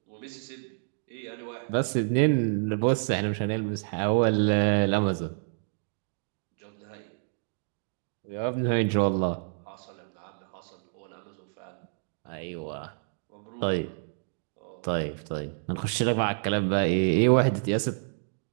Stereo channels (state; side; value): silent; left; digital silence